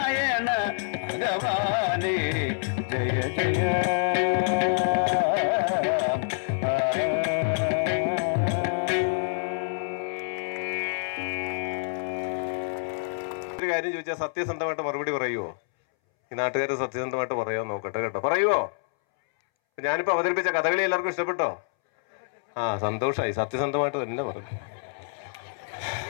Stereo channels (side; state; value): right; silent; 60 dB below the other